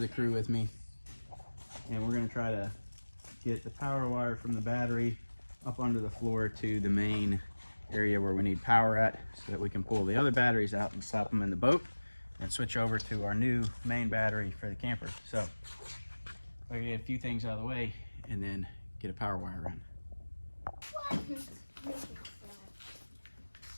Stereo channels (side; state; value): both; inverted; correlation -1.00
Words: the crew with me, and we're gonna try to get the power wire from the battery up under the floor to the main area where we need power at, so that we can pull the other batteries out and slap them in the boat and switch over to our new main battery for the camper. So we're gonna get a few things out of the way and then get a power wire run.